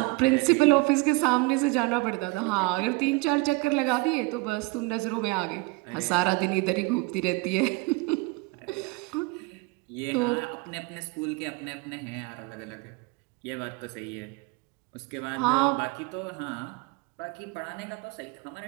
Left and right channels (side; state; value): left; quieter; 25.0 dB